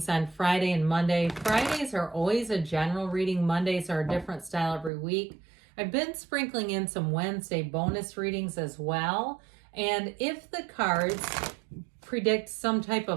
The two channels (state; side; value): drops out; left; at 4.9 s